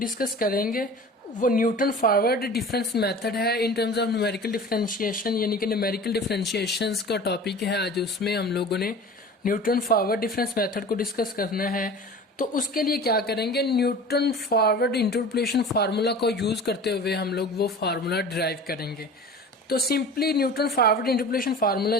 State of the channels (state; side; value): normal; both; correlation 0.39